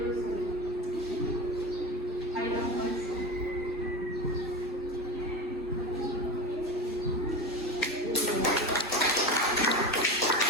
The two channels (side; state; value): both; normal; correlation 0.25